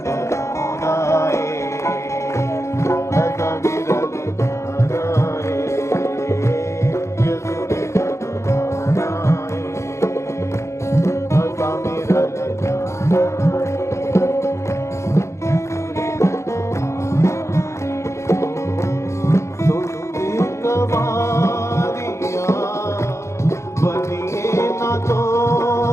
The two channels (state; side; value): late; right; 0.14 ms